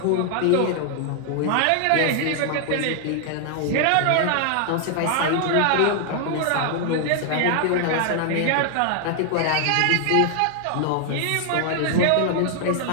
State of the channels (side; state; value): both; different; correlation 0.00